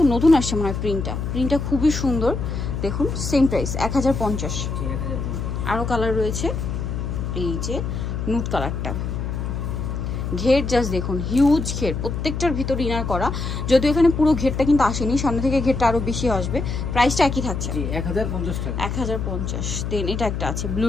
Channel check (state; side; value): noise; left; hum, 3 dB below the sound